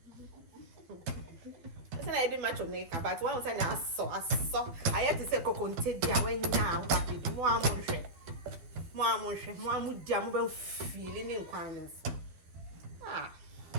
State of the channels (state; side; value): late; left; 12 ms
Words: I did much on neck, but one was I saw. I had to say coconte dia when now happy. More mood jam feeling in kindness.